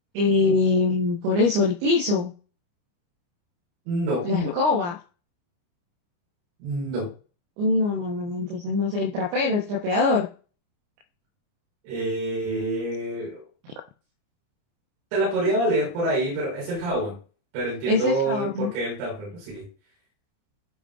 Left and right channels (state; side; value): late; left; 29 ms